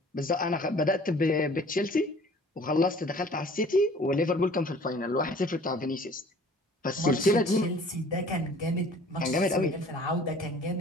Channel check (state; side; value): normal; both; correlation 0.51